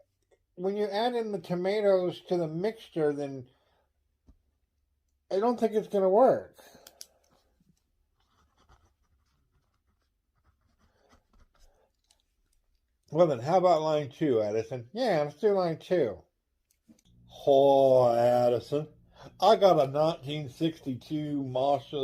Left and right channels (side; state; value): both; identical; correlation 1.00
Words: when you add in the tomatoes to the mixture, then I don't think it's gonna work. Well, then, how about line two, Addison? Yeah, let's do line two. Oh, Addison, I got a 1962